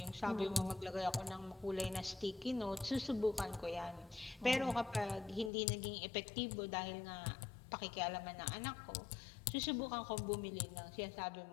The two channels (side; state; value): right; drops out; at 5.5 s